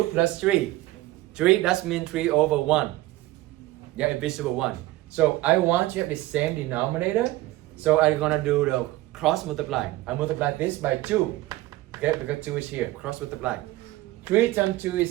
plus 3. 3, that means 3 over 1. Yeah, invisible 1. So I want you to have the same denominator. So I'm gonna do the cross multiply. I multiply this by 2. Okay, because 2 is here. Cross multiply. 3 times 2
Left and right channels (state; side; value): quieter; left; 17.6 dB